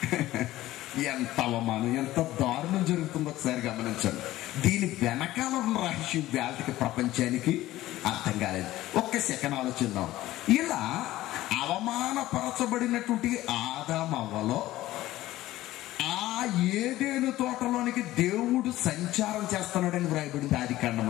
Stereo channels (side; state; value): right; quieter; 15.8 dB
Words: ఎంత అవమానం, ఎంత దారుణం జరుగుతుందో ఒకసారి గమనించండి. దీని వెనకాల ఉన్న రహస్యం వేళకి ప్రపంచానికి అర్థం కాలేదు. ఒక్క సెకండ్ ఆలోచిద్దాం. ఇలా అవమానపరచబడినటువంటి ఆదామవ్వలో ఏదేను తోటలోనికి దేవుడు సంచారం చేస్తున్నాడని వ్రాయబడింది ఆది